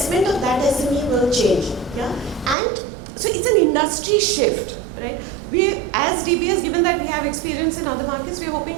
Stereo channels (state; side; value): drops out; left; at 2.6 s